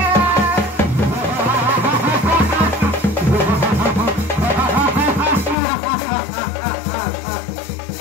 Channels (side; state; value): right; drops out; at 5.6 s